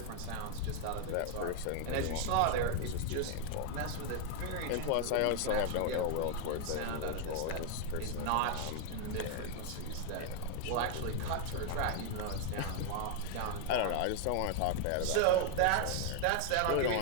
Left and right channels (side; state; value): both; different; correlation 0.00